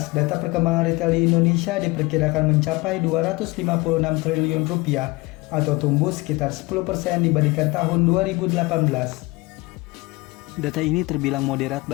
data perkembangan retail di Indonesia diperkirakan mencapai 256 triliun rupiah atau tumbuh sekitar 10% dibandingkan tahun 2018. Data ini terbilang moderat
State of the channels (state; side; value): quieter; right; 23.5 dB